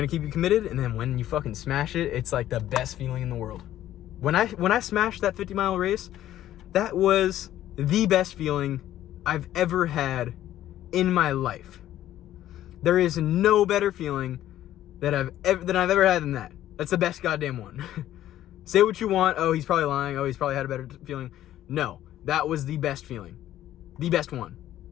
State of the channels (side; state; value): right; quieter; 12.9 dB